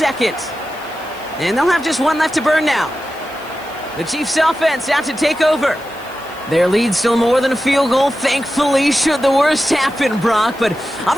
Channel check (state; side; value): noise; left; hiss, 23 dB below the sound